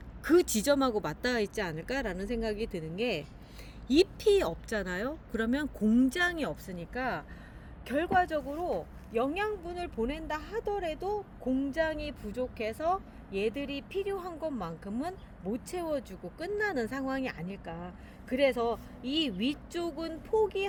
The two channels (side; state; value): both; identical; correlation 1.00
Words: 지점하고 맞닿아 있지 않을까라는 생각이 드는 게, 잎이 없잖아요. 그러면 공장이 없으니까 결과적으로 영양분을 보낸다 하더라도 공장이 부족해서 얘들이 필요한 것만큼은 못 채워주고 끝나는 상황이 아닐까. 그래서 이 위쪽은